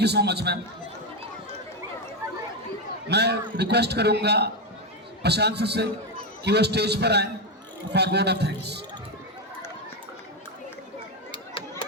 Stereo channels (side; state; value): both; normal; correlation 0.08